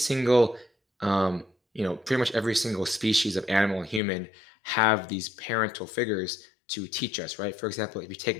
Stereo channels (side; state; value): right; drops out; at 4.0 s